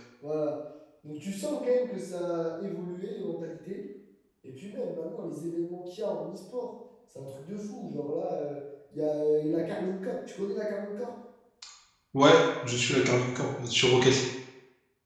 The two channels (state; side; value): identical; both; correlation 1.00